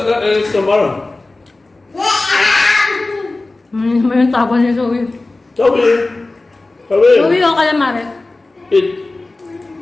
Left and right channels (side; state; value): right; quieter; 3.1 dB